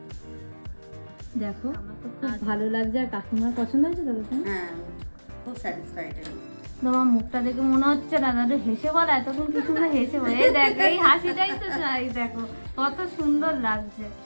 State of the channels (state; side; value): inverted; both; correlation -1.00